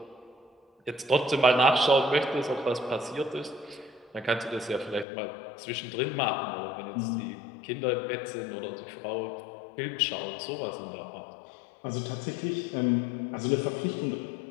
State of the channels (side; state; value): right; drops out; at 5.1 s